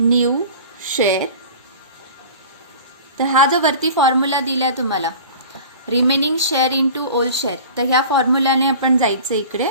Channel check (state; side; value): inverted; both; correlation -0.40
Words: शेअर. तर हा जो वरती फॉर्म्युला दिला तुम्हाला remaining share into old share, तर ह्या फॉर्म्युल्याने आपण जायचं इकडे.